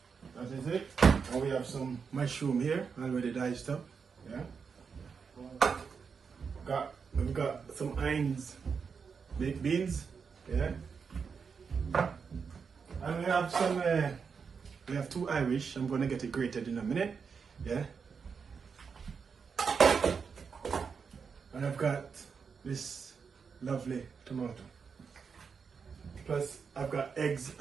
that is it. And we have some mushroom here already diced up. Yeah, we've got some Heinz baked beans. Yeah, and we have some we have two Irish. I'm gonna get it grated in a minute. Yeah, and I've got this lovely tomato. Plus I've got eggs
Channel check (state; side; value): quieter; left; 5.9 dB